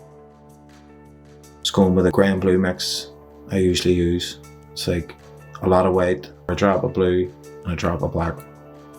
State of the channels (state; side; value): identical; both; correlation 1.00